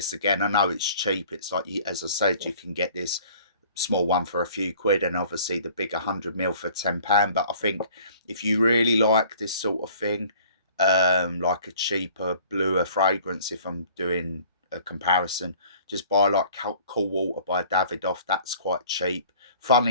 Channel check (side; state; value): both; inverted; correlation -0.52